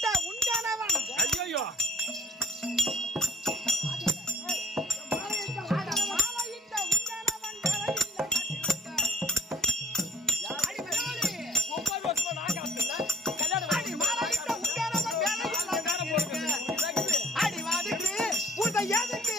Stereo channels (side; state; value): both; normal; correlation 0.59